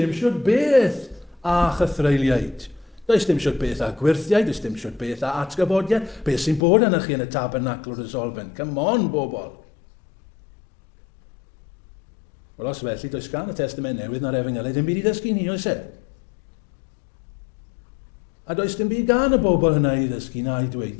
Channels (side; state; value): right; drops out; at 6.6 s